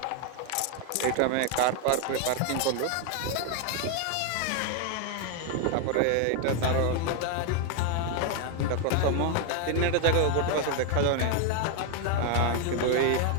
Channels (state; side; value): different; both; correlation 0.01